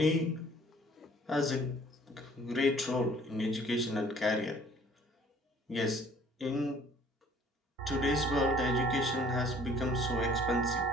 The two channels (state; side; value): normal; both; correlation 0.55